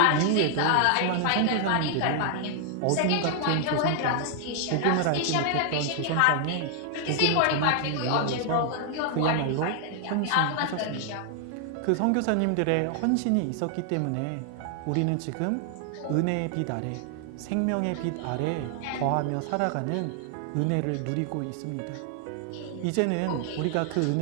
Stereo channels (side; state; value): both; different; correlation 0.00